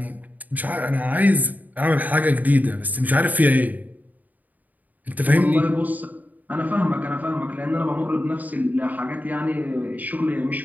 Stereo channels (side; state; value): left; late; 0.080 ms